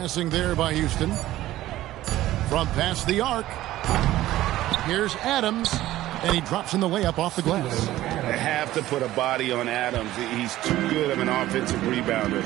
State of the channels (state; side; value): quieter; left; 15.1 dB